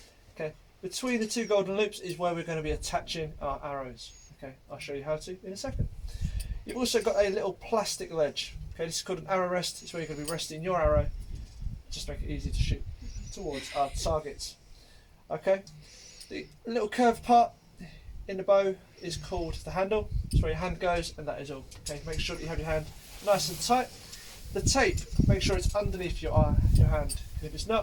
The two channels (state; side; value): identical; both; correlation 1.00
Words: Okay, between the two golden loops is where we're going to be attaching our arrows. Okay, I'll show you how to in a second. You've also got a little plastic ledge. Okay, this is called an arrow rest. It's where you're going to be resting your arrow, just make it easy to shoot towards our targets. Okay, the little curved part in the bow is called the handle. It's where your hand goes, and that is all. Okay, make sure that you have your hand nice and tight. The tape, make sure it's underneath your hand. If it's